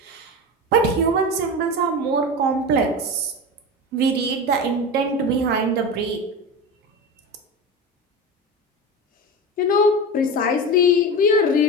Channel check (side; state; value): both; normal; correlation 0.25